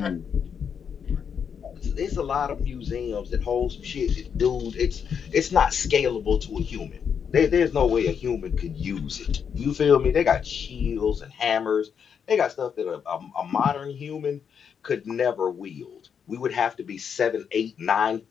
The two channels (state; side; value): quieter; right; 7.2 dB